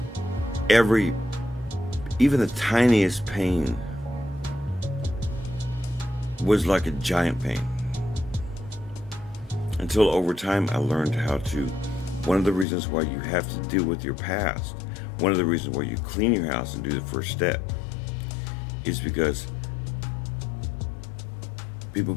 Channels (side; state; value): right; drops out; at 12.7 s